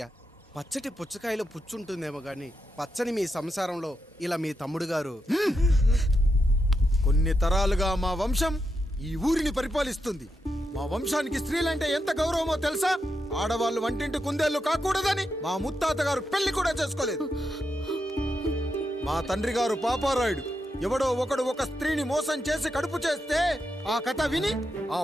పచ్చటి పుచ్చకాయలో పుచ్చుంటుందేమో గాని పచ్చని మీ సంసారంలో ఇలా మీ తమ్ముడు గారు. కొన్ని తరాలుగా మా వంశం ఈ ఊరిని పరిపాలిస్తుంది. మా వంశానికి స్త్రీలంటే ఎంత గౌరవమో తెలుసా? ఆడవాళ్ళు వంటింటి కుందేళ్లు కాకూడదని మా ముత్తాత గారు పెళ్లి కూడా చేసుకోలేదు. మా తండ్రి గారు పాపారాయుడు ఎవడో ఒకడు ఒక స్త్రీని మోసం చేసి కడుపు చేస్తే ఆ కథ విని ఆ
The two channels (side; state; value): both; normal; correlation 0.85